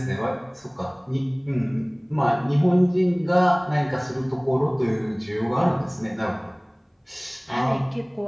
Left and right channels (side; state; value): both; identical; correlation 1.00